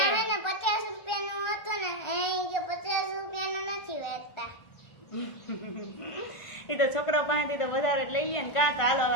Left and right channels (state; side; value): late; right; 1.3 ms